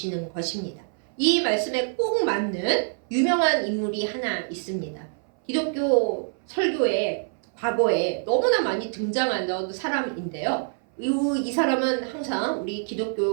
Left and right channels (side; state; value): left; silent; 60 dB below the other